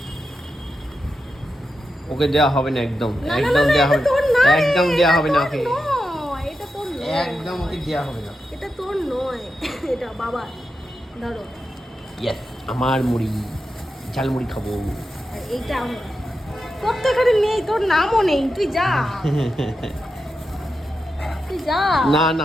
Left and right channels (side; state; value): both; normal; correlation 0.88